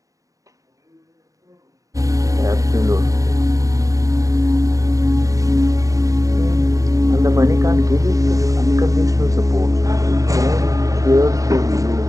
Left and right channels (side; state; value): left; late; 0.16 ms